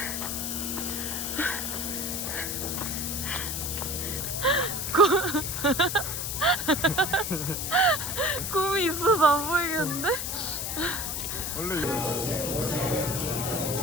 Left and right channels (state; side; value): noise; left; hiss, 3 dB below the sound